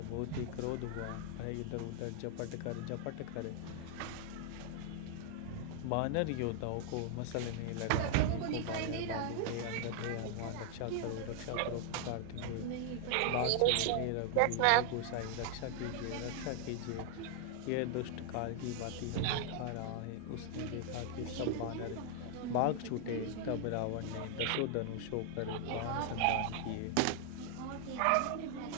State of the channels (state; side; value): different; both; correlation 0.00